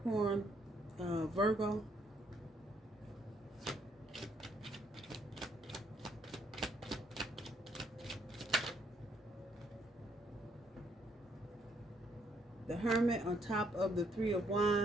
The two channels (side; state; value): both; normal; correlation 0.70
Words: Virgo. The Hermit on top of the Three of